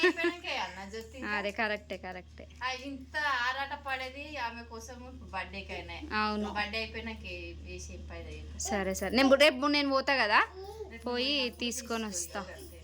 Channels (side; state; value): both; identical; correlation 1.00